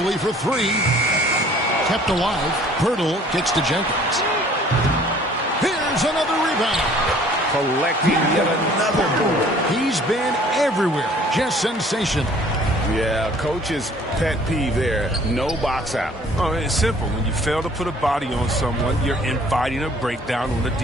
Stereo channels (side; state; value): both; normal; correlation 0.54